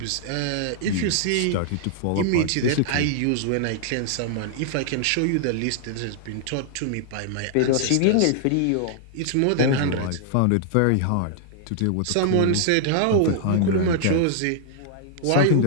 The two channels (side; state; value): both; different; correlation -0.01